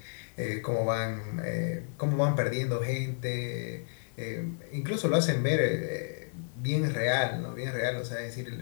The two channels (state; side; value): silent; right; digital silence